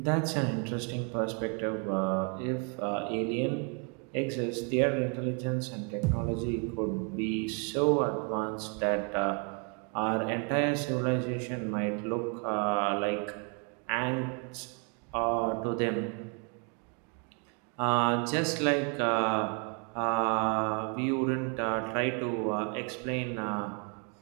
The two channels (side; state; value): left; quieter; 36.3 dB